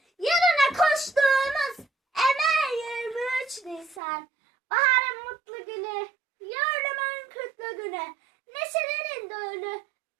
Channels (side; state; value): left; drops out; at 4.0 s